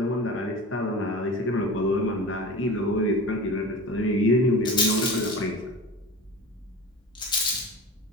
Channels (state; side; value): normal; both; correlation 0.32